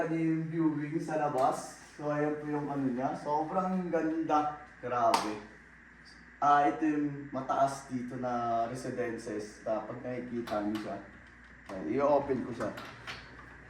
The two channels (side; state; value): both; identical; correlation 1.00